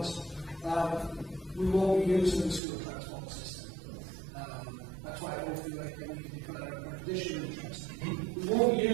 We won't be using the school transport system. That's why I don't feel like we need to declare an additional interest. We won't be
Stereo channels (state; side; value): drops out; left; at 2.6 s